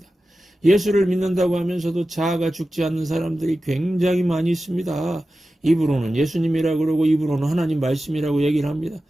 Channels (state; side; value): normal; both; correlation 0.94